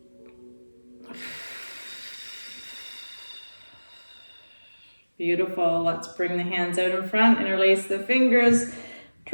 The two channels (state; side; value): inverted; both; correlation -1.00